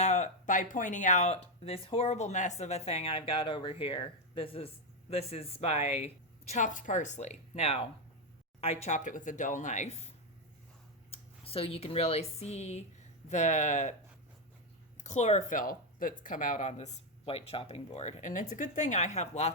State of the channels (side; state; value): both; normal; correlation 0.05